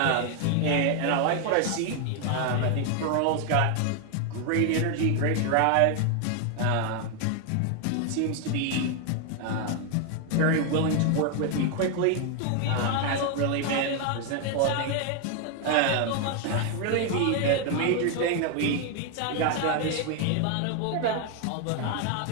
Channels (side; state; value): both; different; correlation 0.01